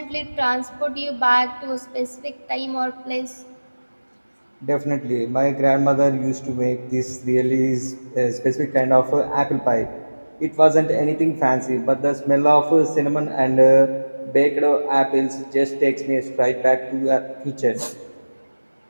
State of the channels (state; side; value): inverted; both; correlation -1.00